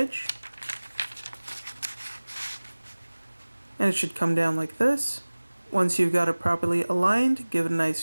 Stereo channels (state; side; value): inverted; both; correlation -1.00